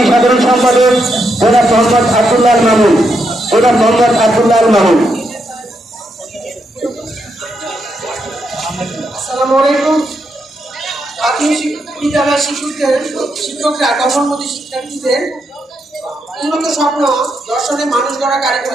সাধারণ সম্পাদক জনাব মোহাম্মদ আব্দুল্লাহ মামুন। আসসালামু আলাইকুম। প্রাথমিক বিদ্যালয়ের শিক্ষকরা কর্মমুখী শিক্ষার্থীদের উন্নত স্বপ্ন দর্শনে মানুষ গড়া কারিগর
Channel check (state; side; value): normal; both; correlation 0.81